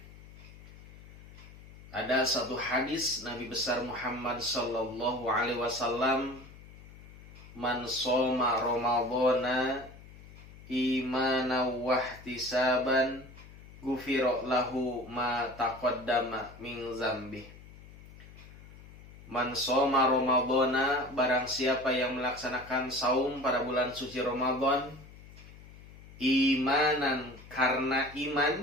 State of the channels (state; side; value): noise; left; hum, 19 dB below the sound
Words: Ada satu hadis Nabi besar Muhammad sallallahu alaihi wasallam, man shoma ramadhana imanan wa ihtisaban ghufira lahu ma taqaddama min dzambi. Man shoma ramadhana, barang siapa yang melaksanakan saum pada bulan suci Ramadan imanan, karena